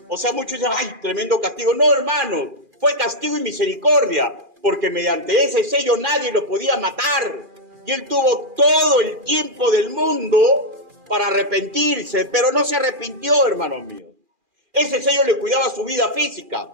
O sea, muchos dicen, ¡ay, tremendo castigo! No, hermano, fue castigo y misericordia, porque mediante ese sello nadie lo podía matar. Y él tuvo todo el tiempo del mundo para arrepentirse, pero no se arrepintió, hermanos míos. Ese sello le cuidaba su vida física.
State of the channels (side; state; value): left; late; 2.4 ms